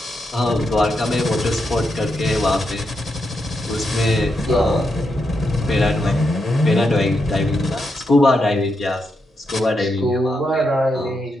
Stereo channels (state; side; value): normal; both; correlation 0.83